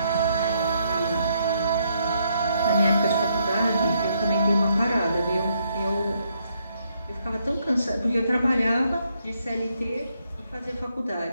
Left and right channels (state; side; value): inverted; both; correlation -0.74